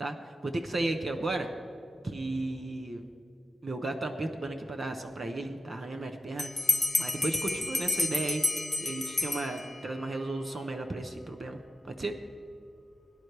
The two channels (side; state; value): both; normal; correlation 0.92